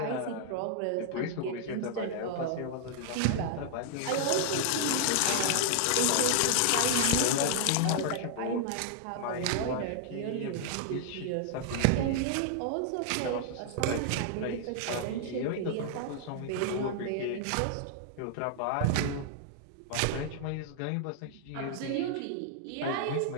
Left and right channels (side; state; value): both; different; correlation -0.01